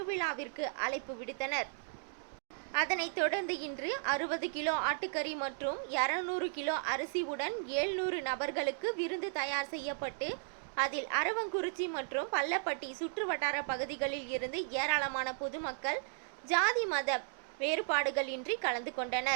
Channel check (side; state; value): left; silent; digital silence